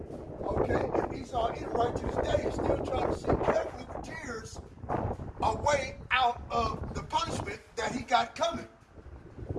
Okay, and ESAU-EDOM right to this day is still trying to seek carefully with tears a way out of the punishment that he got coming.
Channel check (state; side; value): identical; both; correlation 1.00